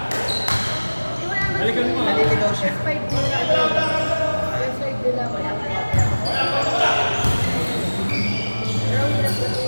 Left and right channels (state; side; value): inverted; both; correlation -1.00